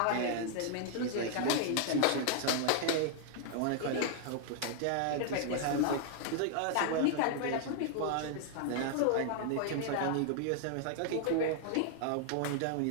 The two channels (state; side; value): different; both; correlation -0.01